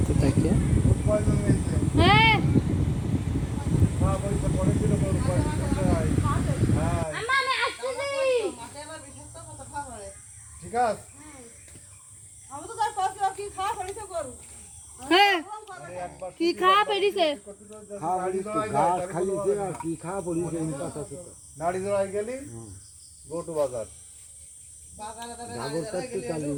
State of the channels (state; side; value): identical; both; correlation 1.00